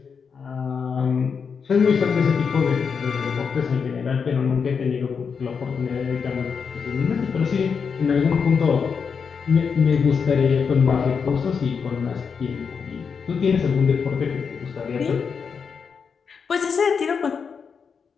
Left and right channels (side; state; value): right; quieter; 6.0 dB